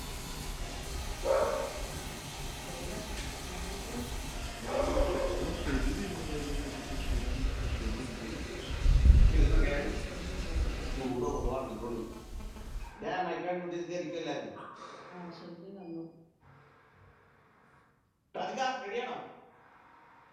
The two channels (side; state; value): both; identical; correlation 1.00